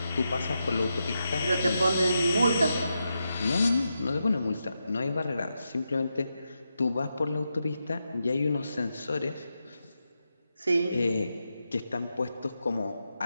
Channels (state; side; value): inverted; both; correlation -0.86